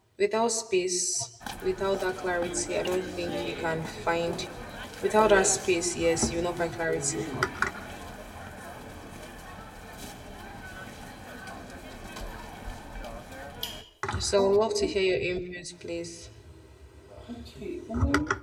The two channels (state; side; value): identical; both; correlation 1.00